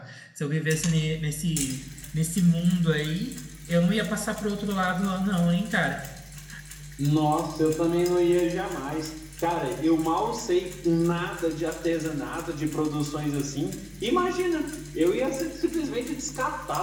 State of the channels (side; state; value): both; identical; correlation 1.00